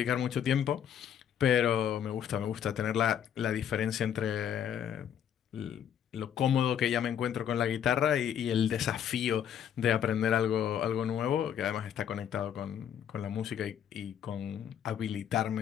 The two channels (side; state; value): right; quieter; 9.1 dB